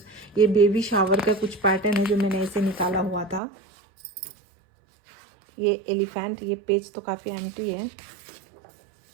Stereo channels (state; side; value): drops out; left; at 3.4 s